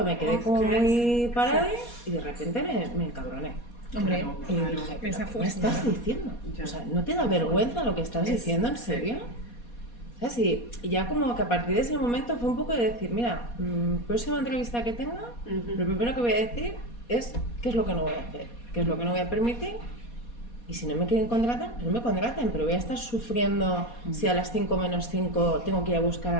me quedé como muy parada y de repente me encabroné. Hombre, Y dije, esa ¿qué me estás diciendo? O sea, ¿no te da vergüenza lo que estás diciendo, en serio? ¿Sabes? Y ya como que a partir de ese momento fue un poco de decir, mira, próxima entrevista que tenga, lo primero que voy a decir es qué es lo que no voy a hacer, qué es lo que no voy a permitir. Y si no me quieren contratar, no me contraten, pero voy a estar sufriendo si a las 5 menos 5 tengo que ir a buscar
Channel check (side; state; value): right; late; 4.2 ms